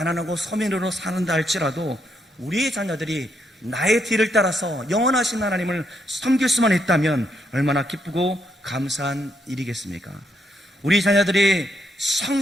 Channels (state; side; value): normal; both; correlation 0.77